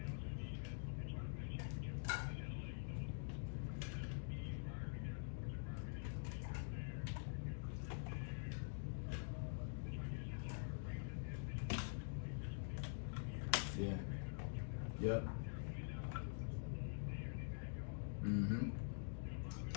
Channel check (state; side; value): silent; right; digital silence